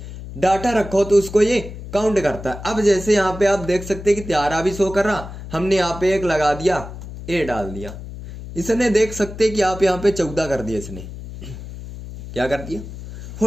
डाटा रखा हो तो उसको ये काउंट करता है। अब जैसे यहाँ पे आप देख सकते हैं कि 13 भी शो कर रहा, हमने यहाँ पे एक लगा दिया, ए डाल दिया, इसने देख सकते हैं कि आप यहाँ पे 14 कर दिया, इसने क्या कर दिया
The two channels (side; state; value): left; noise; hum, 12 dB below the sound